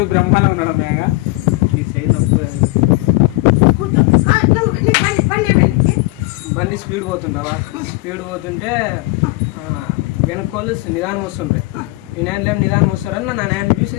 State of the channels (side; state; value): right; quieter; 22.3 dB